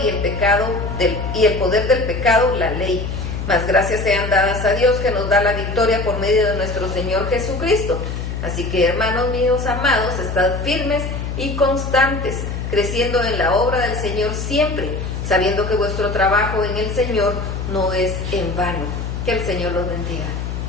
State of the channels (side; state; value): left; noise; hum, 5 dB below the sound